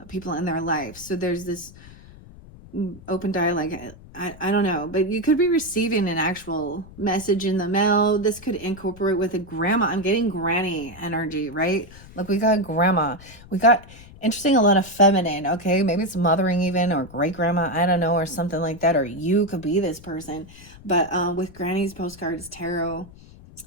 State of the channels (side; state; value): left; noise; rumble, 20 dB below the sound